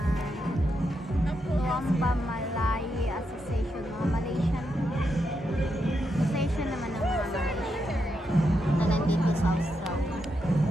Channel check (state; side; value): normal; both; correlation 0.83